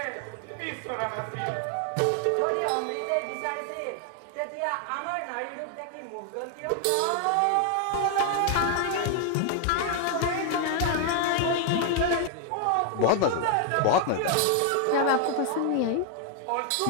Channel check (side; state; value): both; different; correlation 0.00